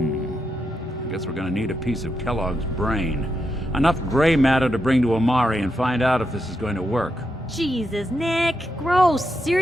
guess we're gonna need a piece of Kellogg's brain. Enough gray matter to bring to Amari and find out if this is going to work. Jesus, Nick. Gross.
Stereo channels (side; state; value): both; normal; correlation 0.84